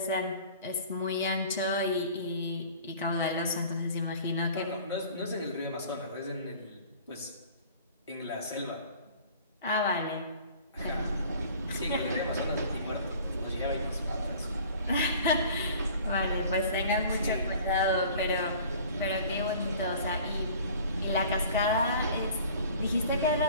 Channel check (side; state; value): both; inverted; correlation -0.47